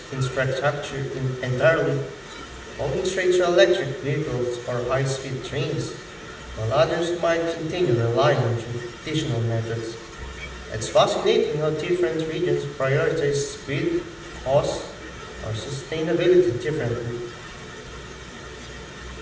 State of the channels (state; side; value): identical; both; correlation 1.00